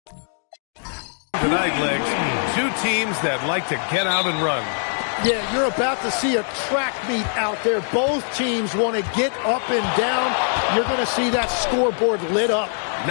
Tonight, Legs, two teams that like to get out and run. Yeah, you're about to see a track meet out there. Both teams want to get up and down. You're going to see that scoreboard lit up.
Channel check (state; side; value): silent; right; 62 dB below the other